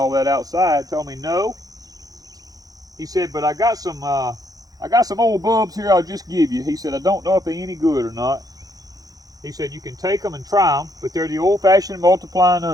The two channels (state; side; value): late; left; 0.18 ms